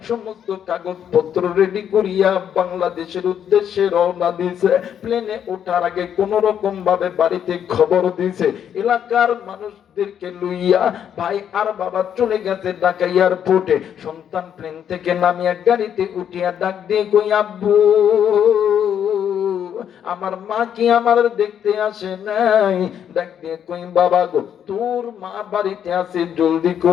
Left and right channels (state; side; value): quieter; right; 9.0 dB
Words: সমস্ত কাগজপত্র রেডি করিয়া বাংলাদেশের উদ্দেশ্যে রওনা দিয়েছে। প্লেনে ওঠার আগে কোন রকম ভাবে বাড়িতে খবর দিছে, এলাকার মানুষদেরকে লইয়া ভাই আর বাবা চলে গেছে ঢাকা এয়ারপোর্টে। সন্তান প্লেন থেকে নামিয়া গাড়িতে উঠিয়া ডাক দিয়ে কই আব্বু, আমার মা কি আমার দেখতে আসে নাই? ডাক দিয়ে কই বাবা গো, তোর মা বাড়িতে আছে, জলদি